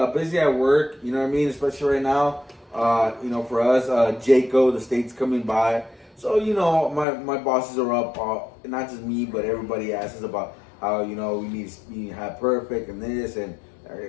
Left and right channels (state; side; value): drops out; right; at 7.1 s